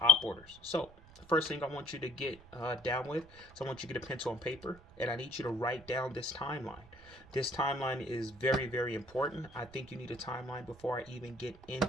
op orders. So, the first thing I want you to get down with is I want you to get a pencil and paper, and I need you to write down this timeline. This timeline is very, very important. I think you need a timeline before I even get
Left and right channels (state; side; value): noise; right; rumble, 22 dB below the sound